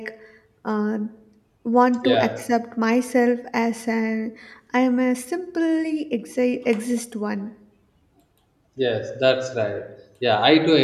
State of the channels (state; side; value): identical; both; correlation 1.00